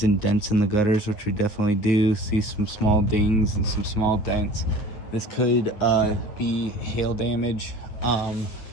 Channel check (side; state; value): right; late; 9.4 ms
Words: and dents in the gutters, which we definitely do. See some small dings and some small dents. This could be hail damage.